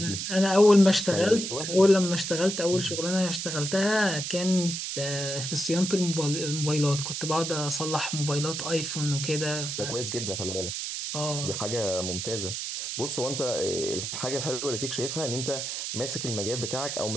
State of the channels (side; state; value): right; noise; hiss, 4 dB below the sound